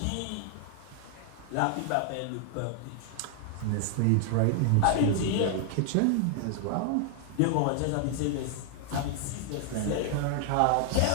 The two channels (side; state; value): both; different; correlation 0.00